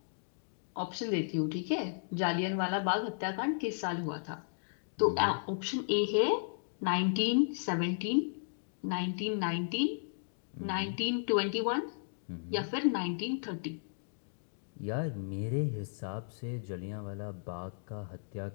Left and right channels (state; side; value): silent; right; digital silence